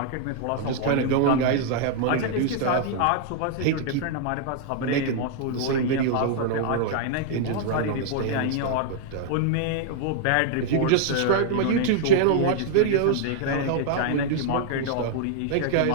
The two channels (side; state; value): both; different; correlation -0.01